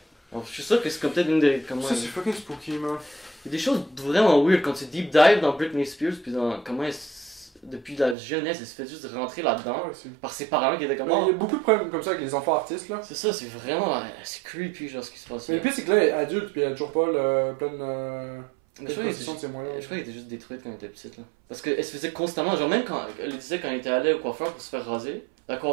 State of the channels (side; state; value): left; drops out; at 8.2 s